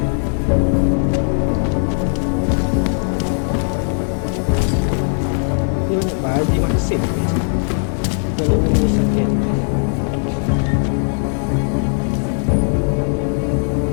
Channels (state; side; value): silent; right; 61 dB below the other